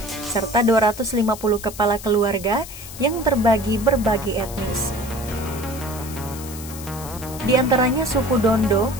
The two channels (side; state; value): left; noise; hiss, 13 dB below the sound